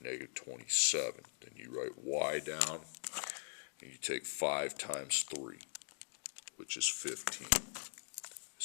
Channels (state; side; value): silent; right; digital silence